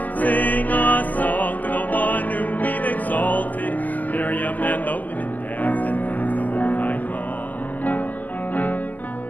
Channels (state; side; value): late; right; 0.081 ms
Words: Sing a song to the one whom we've exalted. Miriam and the women danced and danced the whole night long.